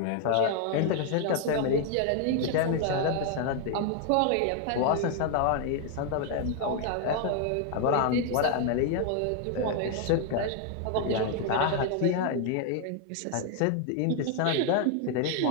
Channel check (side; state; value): both; different; correlation 0.00